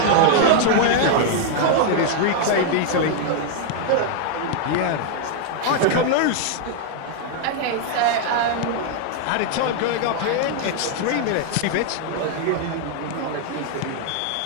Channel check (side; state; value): both; different; correlation 0.00